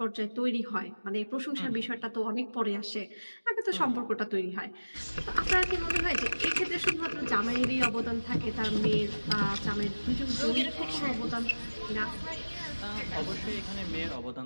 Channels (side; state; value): both; inverted; correlation -1.00